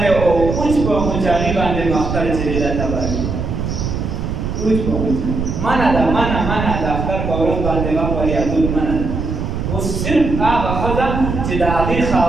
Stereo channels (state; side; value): noise; right; rumble, 3 dB below the sound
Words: او اوس په مجاهي باندې مختار چې دا تباه اوس په منع د اختر په ورځ باندې غم وریادول منع ده اوس صرف هغه ښځه چې د هغې